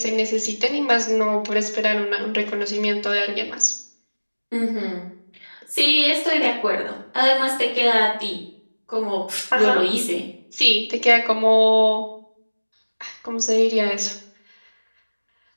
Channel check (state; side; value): inverted; both; correlation -1.00